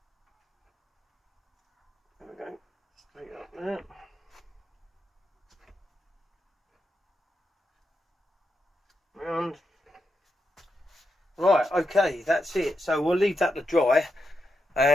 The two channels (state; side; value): normal; both; correlation 0.85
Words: There we go, straight up there. Round. Right, okay, that's it. So we'll leave that to dry